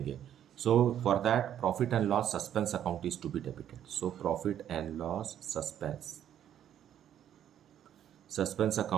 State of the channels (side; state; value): left; quieter; 10.3 dB